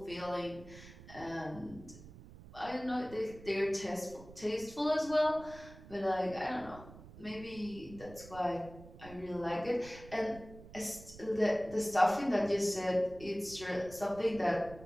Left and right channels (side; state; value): right; noise; rumble, 17 dB below the sound